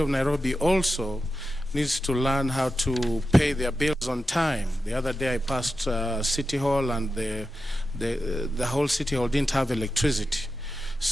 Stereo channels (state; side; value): normal; both; correlation 0.91